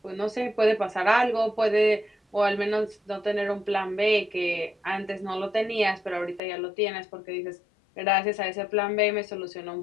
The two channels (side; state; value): right; drops out; at 6.4 s